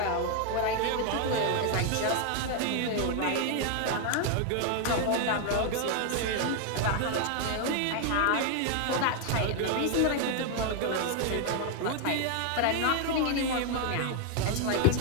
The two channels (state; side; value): different; both; correlation 0.00